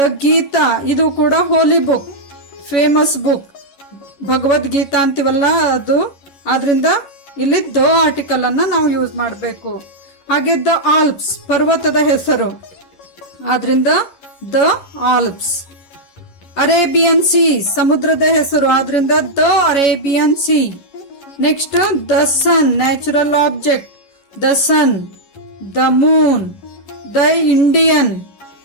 ಗೀತಾ, ಇದು ಕೂಡ ಹೋಲಿ ಬುಕ್, ಫೇಮಸ್ ಬುಕ್, ಭಗವದ್ಗೀತಾ ಅಂತೀವಲ್ಲ ಅದು. ಆದ್ರಿಂದ ಇಲ್ಲಿ ದ ಆರ್ಟಿಕಲ್ ಅನ್ನ ನಾವು ಯೂಸ್ ಮಾಡಬೇಕು. ಹಾಗೆ ದ ಆಲ್ಪ್ಸ್, ಪರ್ವತದ ಹೆಸರು, ಆದ್ರಿಂದ ದ ಆಲ್ಪ್ಸ್. ಅರೇಬಿಯನ್ ಸಿ, ಸಮುದ್ರದ ಹೆಸರು, ಆದ್ರಿಂದ the Arabian sea. Next the sun, natural object, the sun. The moon, the Indian,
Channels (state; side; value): late; right; 11 ms